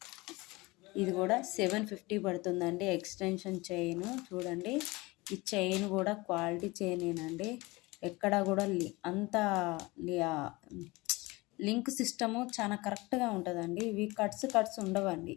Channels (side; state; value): right; quieter; 22.8 dB